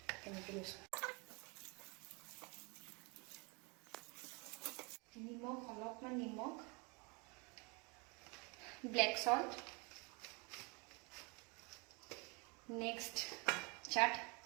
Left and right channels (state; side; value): quieter; left; 28.9 dB